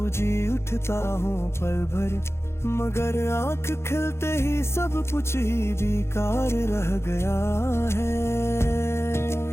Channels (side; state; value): right; late; 0.12 ms